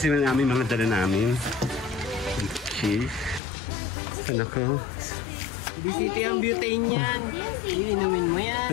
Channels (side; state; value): right; drops out; at 3.4 s